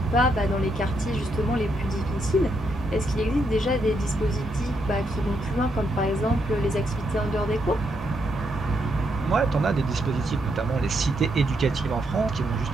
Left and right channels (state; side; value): normal; both; correlation 0.79